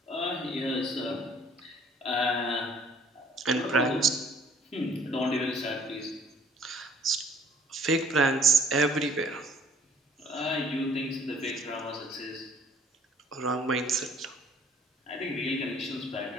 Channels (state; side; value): normal; both; correlation 0.56